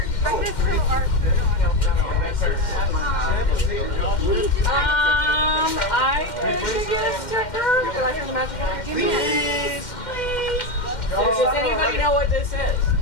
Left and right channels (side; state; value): right; late; 2.1 ms